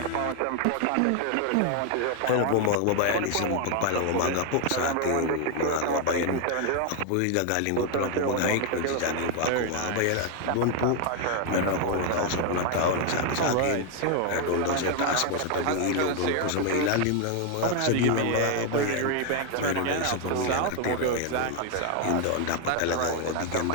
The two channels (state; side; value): different; both; correlation 0.01